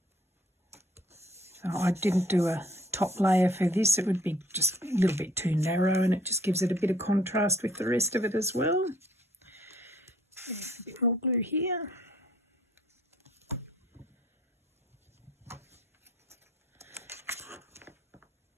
So I didn't do a top layer for this. It would be just a little bit too narrow, and it just gives it a bit of contrast with the rest of it as well. There's a bit more glue here.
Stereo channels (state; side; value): normal; both; correlation 0.60